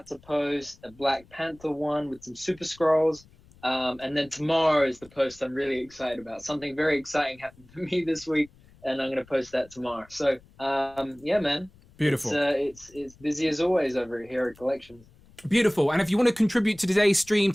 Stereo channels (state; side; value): noise; left; rumble, 26 dB below the sound